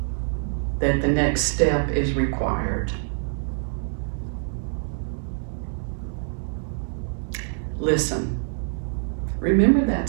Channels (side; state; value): left; silent; 62 dB below the other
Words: that the next step is required, listen. Remember